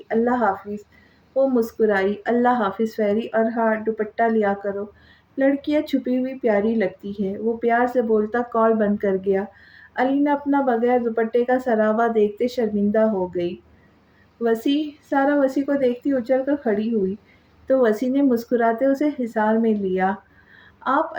اللہ حافظ۔ وہ مسکرائی، اللہ حافظ فیری، اور ہاں دوپٹہ لیا کرو، लड़कियां छुपी हुई प्यारी लगती है, वो प्यार से बोलता कॉल बंद कर गया। अलीना अपना बगैर दुपट्टे का सरावा देखते शर्मिंदा हो गई। वसी, सारा वसी को देखती उछल कर खड़ी हुई, तो वसी ने मुस्कुराते उसे हिसार में लिया। आप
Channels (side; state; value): both; identical; correlation 1.00